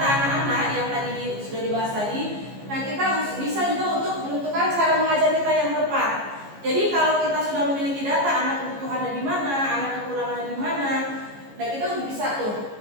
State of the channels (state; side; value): late; left; 14 ms